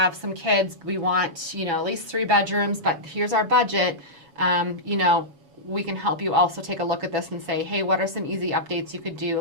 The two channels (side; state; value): left; late; 7.1 ms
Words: some kids. We want, at least 3 bedrooms, but here's our budget. We can help you also take a look at this and say, hey, what are some easy updates you could do?